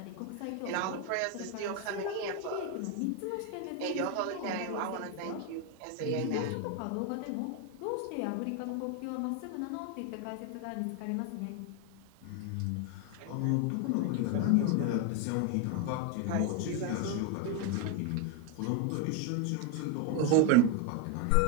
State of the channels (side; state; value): both; different; correlation 0.01